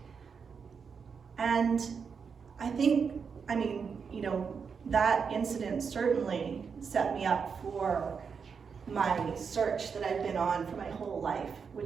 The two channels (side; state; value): left; quieter; 6.0 dB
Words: And I think, that incident certainly set me up for my search that I've been on for my whole life,